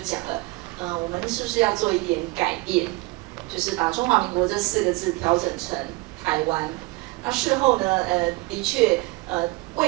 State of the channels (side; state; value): left; quieter; 23.1 dB